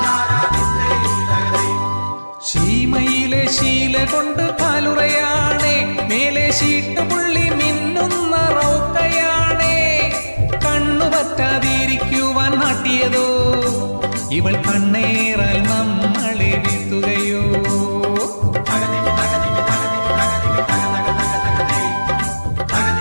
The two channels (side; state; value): both; inverted; correlation -1.00